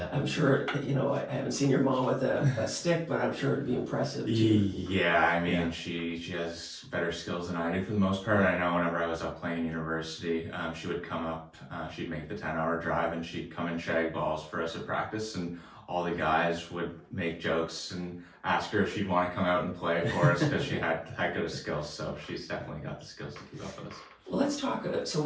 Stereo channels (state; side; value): identical; both; correlation 1.00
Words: I'm sure, I haven't seen your mom with a stick, but I'm sure it'd be impressive too. Yeah, I mean, she has better skills than I do for the most part. I know whenever I was up playing university, she would come up, she'd make the 10-hour drive, and she'd come and shag balls for us at practice, and all the guys would make jokes and ask her if she'd want to come out and play for us, because she had good skills. So she's definitely got the skills to keep up with us. Well, let's talk. So